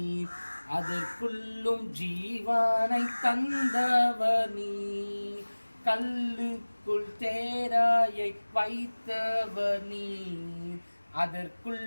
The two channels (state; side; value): inverted; both; correlation -1.00